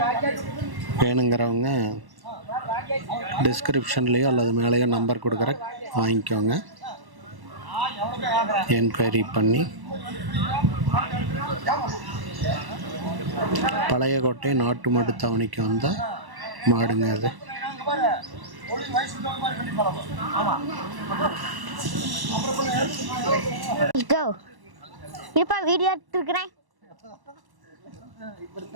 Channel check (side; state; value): left; late; 1.1 ms